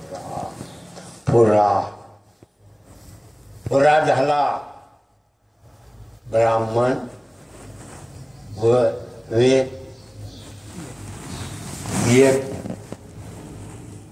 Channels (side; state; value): both; identical; correlation 1.00